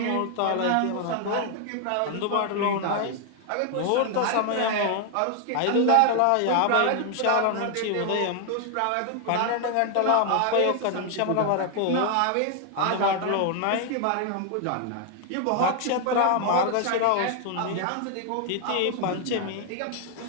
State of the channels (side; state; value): both; different; correlation 0.00